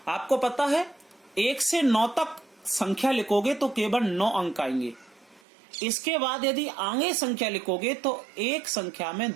आपको पता है 1 से 9 तक संख्या लिखोगे तो केवल 9 अंक आएंगे। इसके बाद यदि आगे संख्या लिखोगे तो एक संख्या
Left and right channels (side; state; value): left; drops out; at 5.4 s